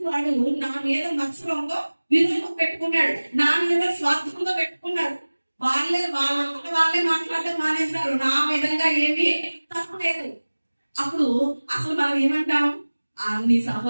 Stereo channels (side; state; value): both; inverted; correlation -1.00